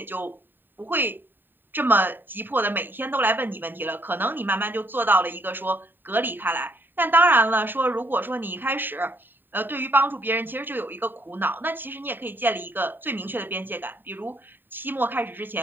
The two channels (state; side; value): late; left; 0.093 ms